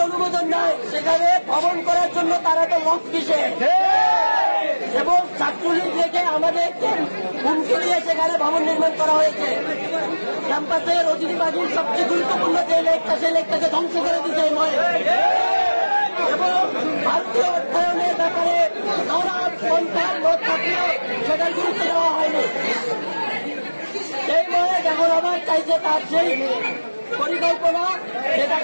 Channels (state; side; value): inverted; both; correlation -1.00